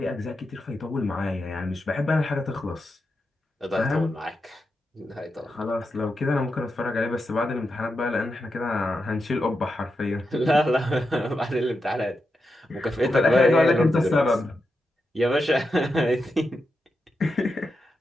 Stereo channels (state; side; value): normal; both; correlation 0.87